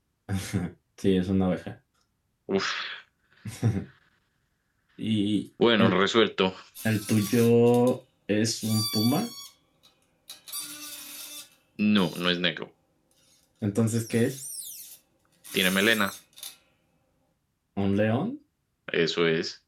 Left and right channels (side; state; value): both; identical; correlation 1.00